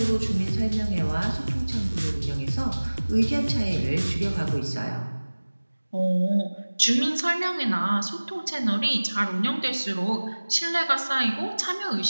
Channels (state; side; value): inverted; both; correlation -1.00